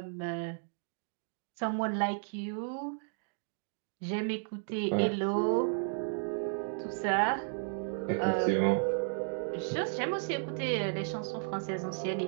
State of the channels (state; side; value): silent; left; digital silence